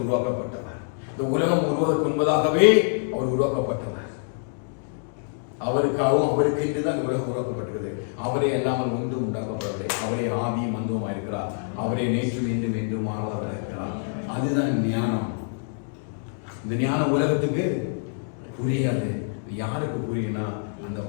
உருவாக்கப்பட்டவர். இந்த உலகம் உருவாக்கு முன்பதாகவே அவர் உருவாக்கப்பட்டவர். அவருக்காகவும் அவருக்கு என்றுதான் இந்த உலகம் உருவாக்கப்பட்டது. அவரே எல்லாமல் ஒன்று உண்டாக்கப்படவில்லை. அவரே ஆவியும் மந்தவுமா இருக்கிறார். அவரே நேற்றும் இன்றும் என்றும் மாறாதவர் இருக்கிறார். அதுதான் ஞானம். இந்த ஞானம் உலகத்துக்கு புரியாது. யாருக்கு புரியும்னா அந்த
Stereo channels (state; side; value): silent; right; digital silence